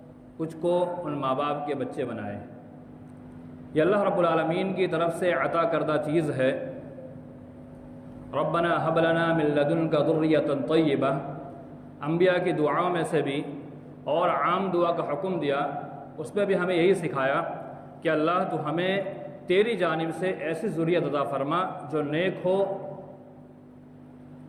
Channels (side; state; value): both; identical; correlation 1.00